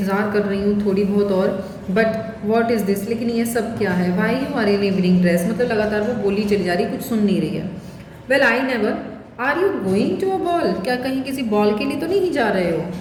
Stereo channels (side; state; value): both; identical; correlation 1.00